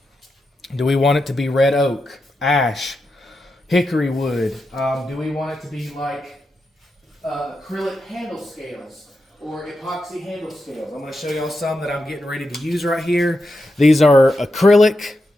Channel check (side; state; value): both; normal; correlation 0.87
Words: we want it to be red oak, ash, hickory wood? Do we want it to be like acrylic handle scales or epoxy handle scales? I'm going to show y'all some that I'm getting ready to use right here. These are acrylic